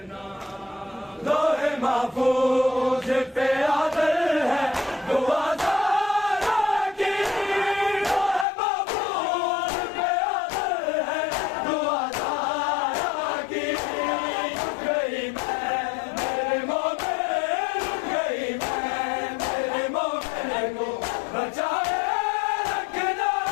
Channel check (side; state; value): right; drops out; at 8.5 s